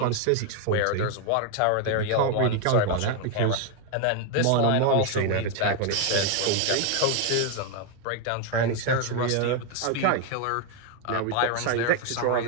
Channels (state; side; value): different; both; correlation 0.01